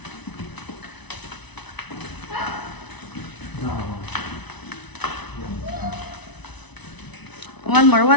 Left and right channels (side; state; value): right; late; 1.0 ms